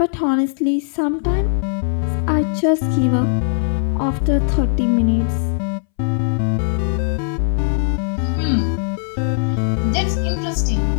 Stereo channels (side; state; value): right; silent; 64 dB below the other